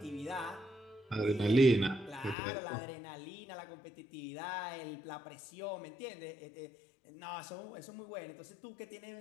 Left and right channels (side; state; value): right; drops out; at 2.4 s